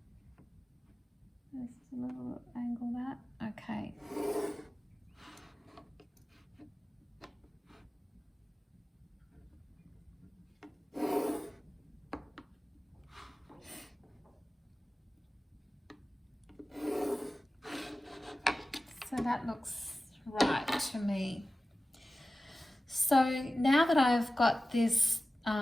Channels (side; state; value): both; normal; correlation 0.96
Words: Just a little angle that. Okay. So that looks right to me. So now that I've got this